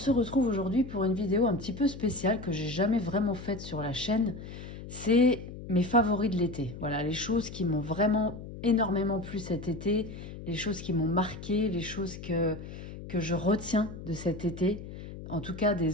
retrouve aujourd'hui pour une vidéo un petit peu spéciale que j'ai jamais vraiment faite sur la chaîne. C'est mes favoris de l'été, voilà, les choses qui m'ont vraiment énormément plu cet été, les choses qui m'ont marqué, les choses que je retiens de cet été. En tout cas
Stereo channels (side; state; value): left; noise; hum, 12 dB below the sound